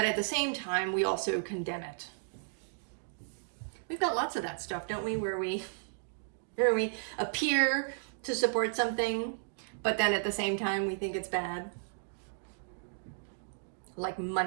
at the same time, we also condemn it. We've got lots of that stuff, don't we? Where we appear to support something, but then at the same time we think it's bad. Like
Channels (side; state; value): left; silent; digital silence